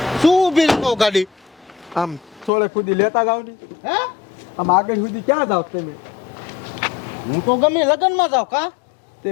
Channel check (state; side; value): drops out; right; at 2.5 s